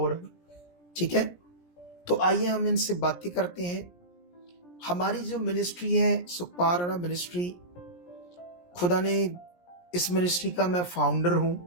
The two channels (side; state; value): right; late; 17 ms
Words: रहा है। ठीक है, तो आइए हम इनसे बातें करते हैं। हमारी जो मिनिस्ट्री है सुखपाल राणा मिनिस्ट्री, खुदा ने इस मिनिस्ट्री का मैं फाउंडर हूं